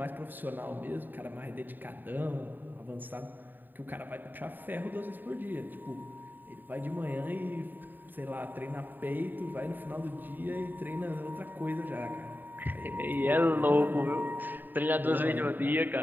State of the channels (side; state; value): left; late; 0.090 ms